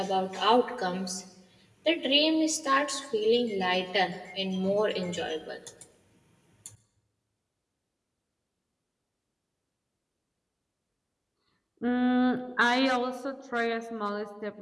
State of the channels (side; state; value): both; identical; correlation 1.00